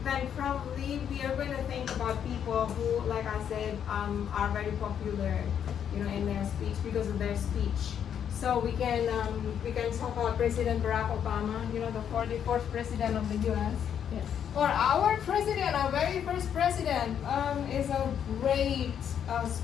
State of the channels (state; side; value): quieter; right; 8.7 dB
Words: then probably we are going to think about people who, like I said, are very popular, in their speech because of their speech. So we can talk about President Barack Obama, the 44th president of the U.S. Yes. Or our president, our very first president, is a great